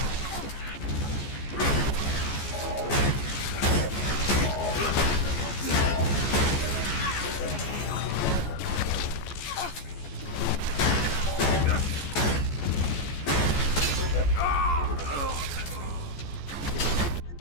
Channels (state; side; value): late; right; 14 ms